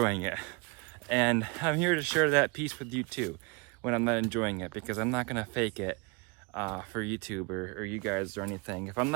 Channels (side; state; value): left; quieter; 29.6 dB